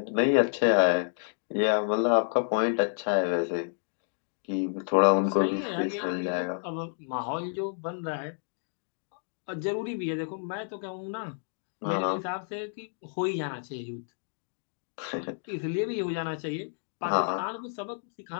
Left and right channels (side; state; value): right; silent; digital silence